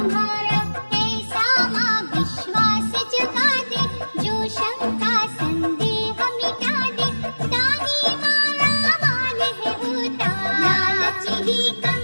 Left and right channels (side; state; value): both; inverted; correlation -1.00